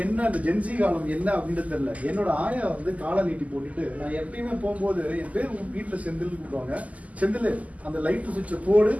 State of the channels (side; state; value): left; late; 0.073 ms